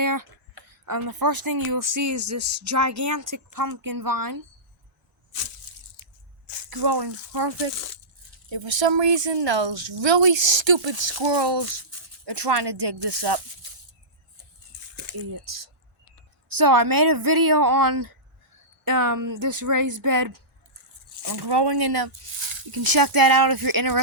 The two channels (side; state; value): both; normal; correlation -0.19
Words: the first thing you will see is this gigantic pumpkin vine. Growing perfect. And for some reason, those really stupid squirrels are trying to dig this up. Idiots. So I made a video on this raised bed. I'm growing in them. You can check that out if you're